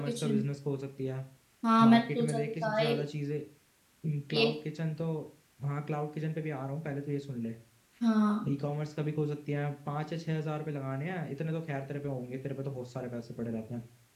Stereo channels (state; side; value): identical; both; correlation 1.00